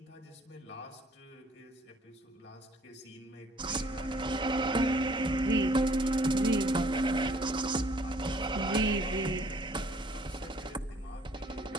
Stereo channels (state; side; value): normal; both; correlation 0.60